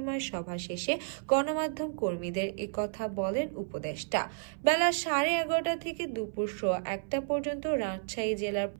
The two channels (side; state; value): left; silent; 57 dB below the other